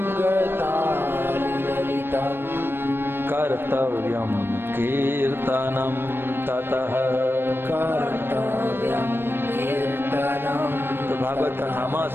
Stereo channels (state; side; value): late; left; 0.10 ms